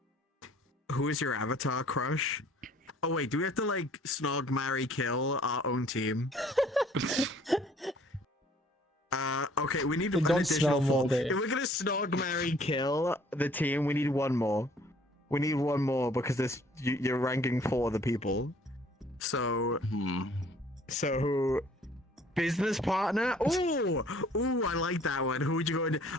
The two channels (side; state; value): both; normal; correlation 0.57